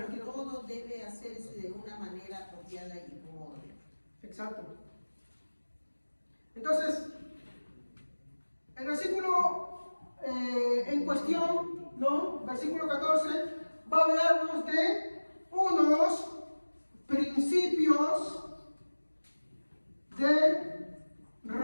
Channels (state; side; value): inverted; both; correlation -1.00